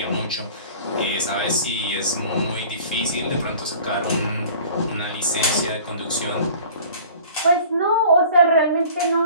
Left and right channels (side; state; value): both; inverted; correlation -0.46